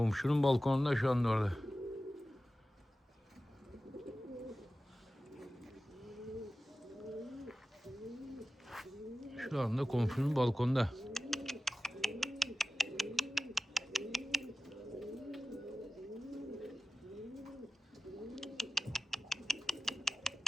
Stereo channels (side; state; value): both; normal; correlation 0.95